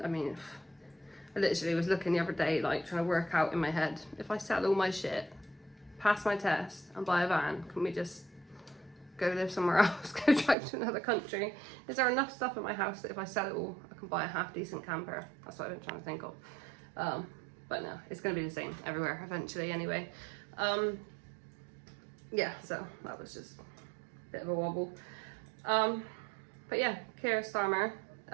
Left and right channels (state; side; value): drops out; left; at 10.6 s